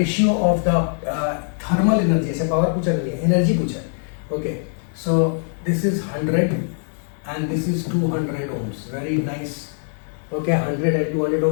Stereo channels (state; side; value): silent; right; 64 dB below the other